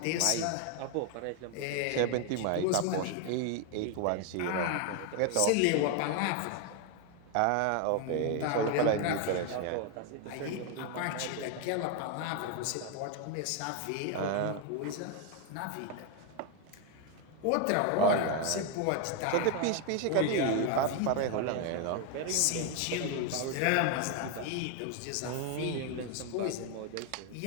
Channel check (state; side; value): different; both; correlation 0.01